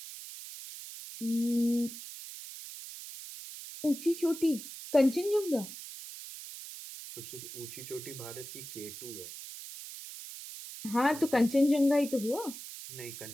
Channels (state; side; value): noise; right; hiss, 12 dB below the sound